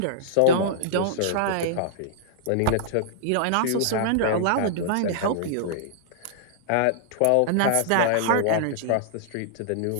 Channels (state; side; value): different; both; correlation -0.01